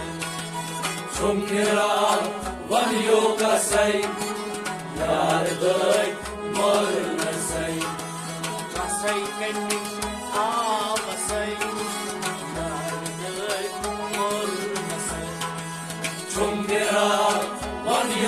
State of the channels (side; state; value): both; identical; correlation 1.00